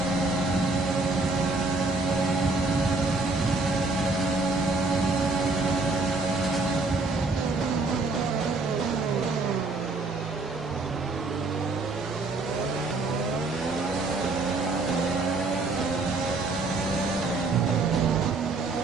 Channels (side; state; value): left; quieter; 3.6 dB